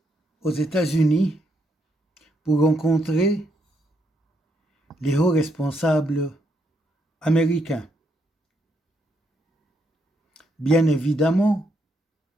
aux États-Unis pour rencontrer les hauts responsables américains. Bien évidemment,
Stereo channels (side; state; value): both; normal; correlation 0.77